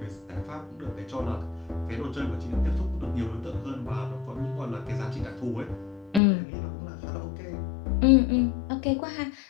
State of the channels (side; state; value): right; drops out; at 6.2 s